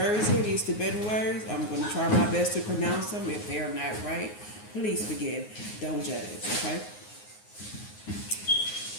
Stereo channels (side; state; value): right; late; 9.6 ms